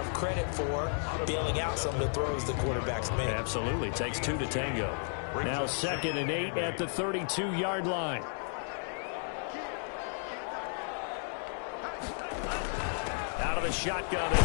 credit for bailing out some of the throws the quarterbacks make. Absolutely. Takes two to tango. Now 2nd and 8 at the 32-yard line. Out of the shotgun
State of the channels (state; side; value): silent; right; 56 dB below the other